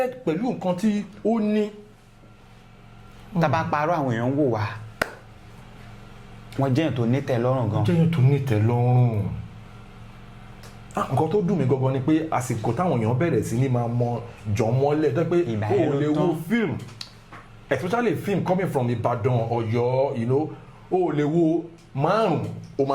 pẹ̀lú nǹkan tí ó ní. tá bá parọ́ àwọn èèyàn ń wò wá wọ́n jẹ́yàn tó ní tẹ́lọ́rùn gan. jẹ́yàn tó ní tẹ́lọ́rùn. nǹkan tó dùn mí gangan ni pé àsìkò táwọn èèyàn bẹ̀rẹ̀ sí ní máa mọ jọmọ́lẹ̀ tó pé o ò lè wo film especially film coming from Ìbàdàn Ọ̀yọ́ you know o ò lè wo márùn o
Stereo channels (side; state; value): both; identical; correlation 1.00